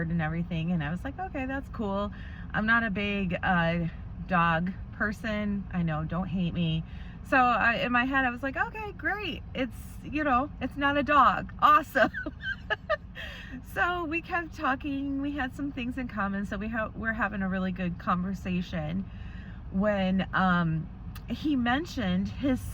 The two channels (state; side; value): identical; both; correlation 1.00